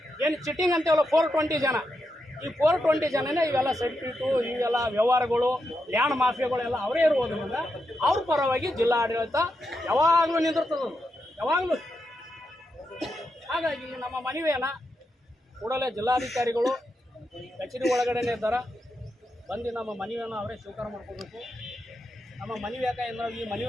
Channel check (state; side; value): normal; both; correlation 0.85